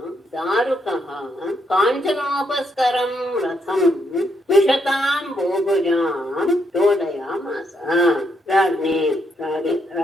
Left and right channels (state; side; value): normal; both; correlation 0.77